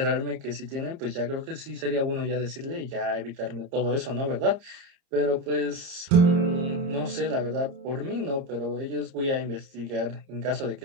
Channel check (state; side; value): late; left; 30 ms